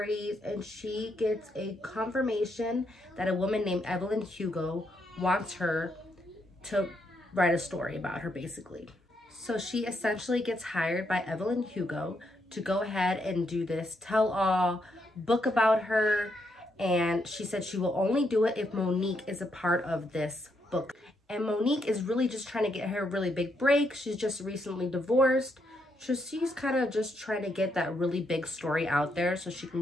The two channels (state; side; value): normal; both; correlation 0.78